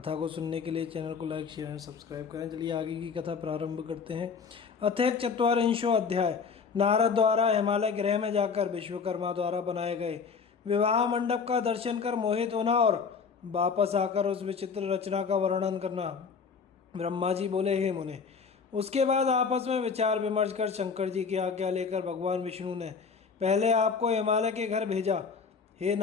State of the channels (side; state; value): right; quieter; 5.6 dB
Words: को सुनने के लिए चैनल को लाइक शेयर एंड सब्सक्राइब करें। चलिए आगे की कथा प्रारंभ करते हैं। अथ चत्वारिंशो अध्याय। नारद द्वारा हिमालय ग्रह में जाकर विश्वकर्मा द्वारा बनाए गए विवाह मंडप का दर्शन कर मोहित होना और वापस आकर उस विचित्र रचना का वर्णन करना। ब्रह्मा जी बोले, हे मुने। उसके बाद आपस में विचार विमर्श कर शंकर जी की आज्ञा लेकर भगवान विष्णु ने पहले आपको हिमालय के घर भेजा। हे